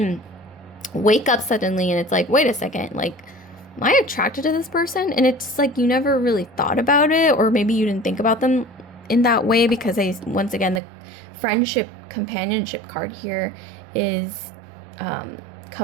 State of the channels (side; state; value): left; drops out; at 10.8 s